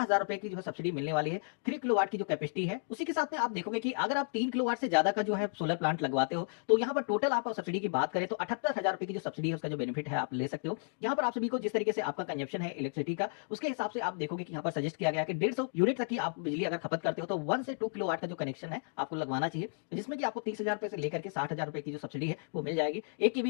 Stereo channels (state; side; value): silent; right; digital silence